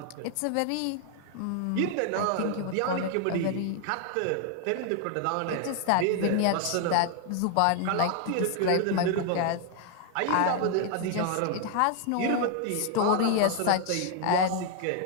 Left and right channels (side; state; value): both; different; correlation 0.00